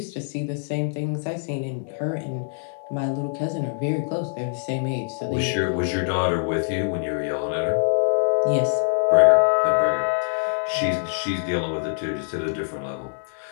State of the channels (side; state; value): right; silent; 63 dB below the other